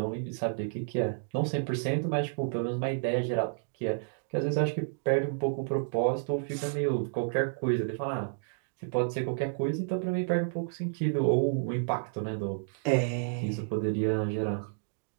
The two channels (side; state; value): left; silent; digital silence